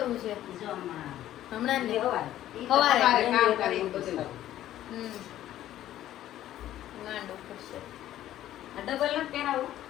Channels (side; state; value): right; quieter; 12.9 dB